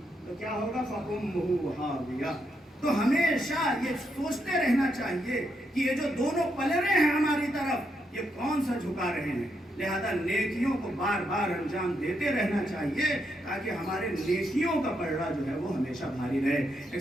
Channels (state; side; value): normal; both; correlation 0.80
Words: تو کیا ہوگا؟ فَأُمُّهُ هَاوِيَةٌ. تو ہمیشہ یہ سوچتے رہنا چاہیے کہ یہ جو دونوں پلڑے ہیں ہماری طرف، یہ کون سا جھکا رہے ہیں. لہذا نیکیوں کو بار بار انجام دیتے رہنا چاہیے تاکہ ہمارے نیکیوں کا پلڑا جو ہے وہ ہمیشہ بھاری رہے.